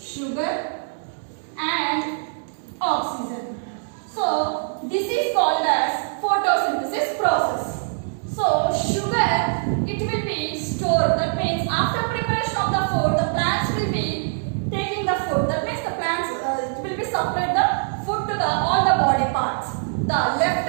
and oxygen. So this is called as photosynthesis process. So sugar, it will be stored. That means after preparation of the food, the plants will be taking the food. That means the plants it will be supplied the food to all the body parts. The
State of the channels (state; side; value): silent; left; 63 dB below the other